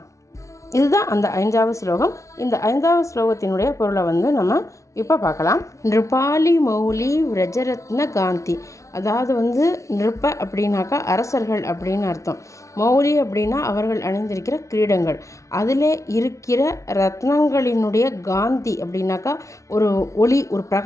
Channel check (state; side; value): late; right; 0.15 ms